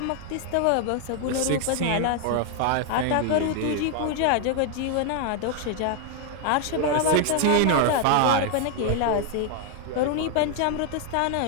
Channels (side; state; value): both; different; correlation 0.00